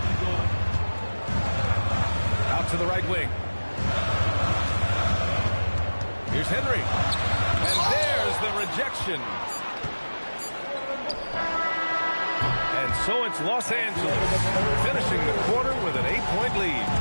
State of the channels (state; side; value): inverted; both; correlation -1.00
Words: Out to the right wing. Here's Henry. And there's the rejection. And so it's Los Angeles finishing the quarter with an 8-point lead.